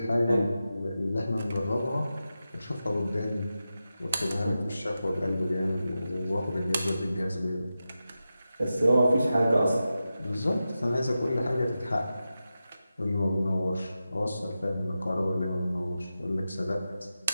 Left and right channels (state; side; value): inverted; both; correlation -0.92